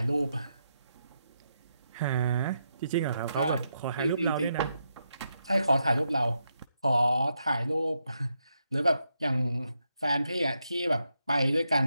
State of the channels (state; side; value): inverted; both; correlation -0.82